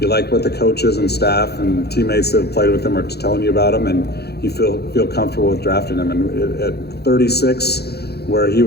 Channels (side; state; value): right; late; 0.47 ms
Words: you like what the coaches and staff and teammates that have played with him are telling you about him, and you feel comfortable with drafting him. And at 36, where he